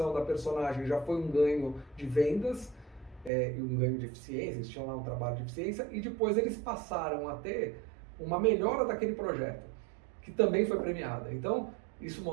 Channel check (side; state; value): left; drops out; at 3.3 s